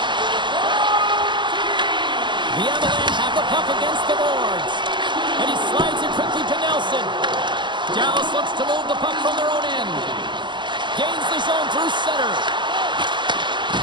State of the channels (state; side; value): late; left; 0.22 ms